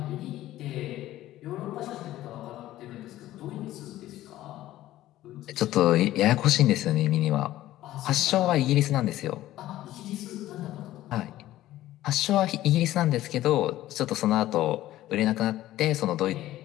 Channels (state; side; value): quieter; right; 14.7 dB